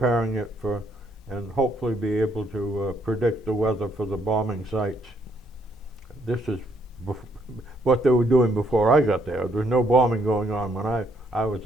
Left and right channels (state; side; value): normal; both; correlation 0.71